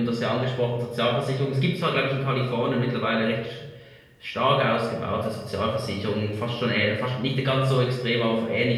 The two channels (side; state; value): both; identical; correlation 1.00